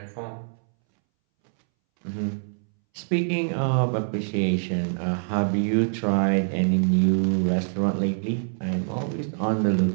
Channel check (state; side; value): silent; left; 62 dB below the other